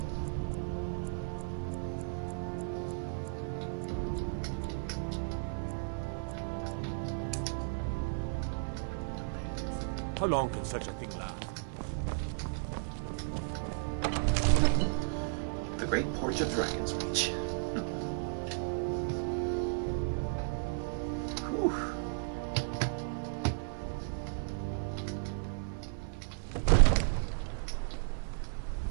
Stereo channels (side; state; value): left; silent; 55 dB below the other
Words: How long can such a thing last? The Great Porch of Dragon's Reach. Whew.